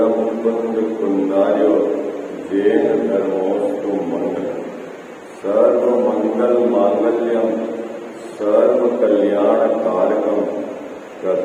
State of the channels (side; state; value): both; identical; correlation 1.00